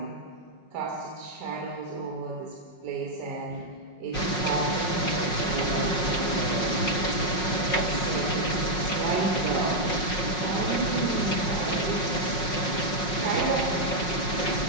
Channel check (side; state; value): right; late; 5.5 ms